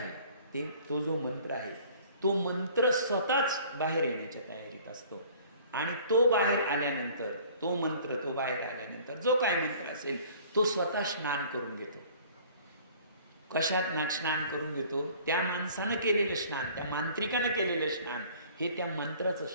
तो जो मंत्र आहे, तो मंत्र स्वतःच बाहेर येण्याच्या तयारीत असतो. आणि तो बाहेर आल्यानंतर, तो बाहेर आल्यानंतर जो काय मंत्र असेल तो स्वतः स्नान करून घेतो. कशात स्नान करून घेतो? त्या माणसानं केलेलं स्नान, त्या मांत्रिकानं केलेलं स्नान हे त्या मंत्राचं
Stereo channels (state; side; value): inverted; both; correlation -0.51